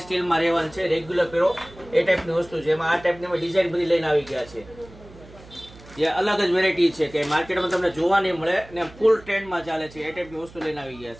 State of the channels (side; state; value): right; noise; hum, 21 dB below the sound